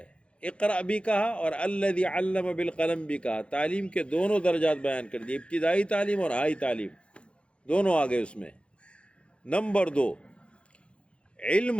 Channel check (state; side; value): late; right; 0.059 ms